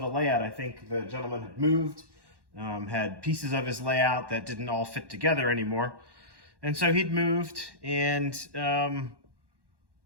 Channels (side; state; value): left; late; 1.1 ms